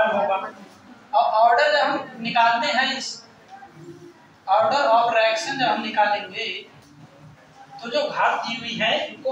होगा। और ऑर्डर जब हम निकालते हैं, इस ऑर्डर ऑफ रिएक्शन जब हम निकालेंगे तो जो घात दी हुई है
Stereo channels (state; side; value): identical; both; correlation 1.00